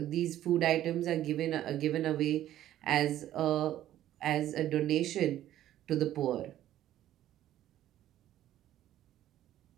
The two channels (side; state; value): left; quieter; 12.7 dB